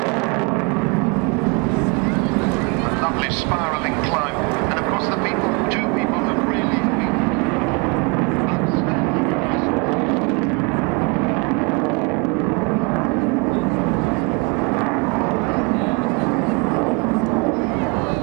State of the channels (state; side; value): quieter; left; 30.9 dB